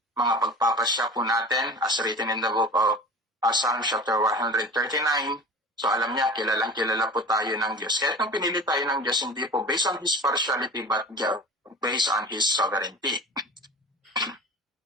mga pagpapasya po natin, as written in the book of Psalm chapter 139. So alam niya, kilalang kilala po tayo ng Diyos. Kahit nung pinili tayo ng Diyos, hindi po based on His partiality, but based on His sovereignty.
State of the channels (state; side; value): normal; both; correlation 0.36